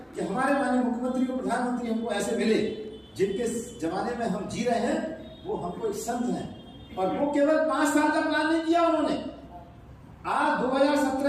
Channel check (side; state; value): both; identical; correlation 1.00